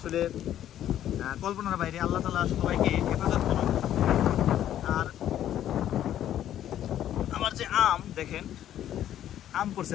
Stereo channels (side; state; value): right; quieter; 11.4 dB